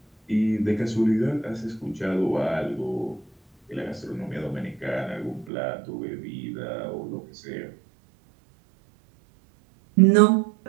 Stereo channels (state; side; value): drops out; left; at 5.5 s